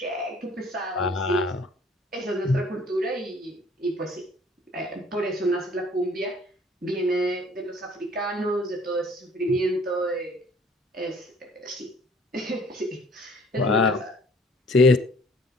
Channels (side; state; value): both; normal; correlation 0.55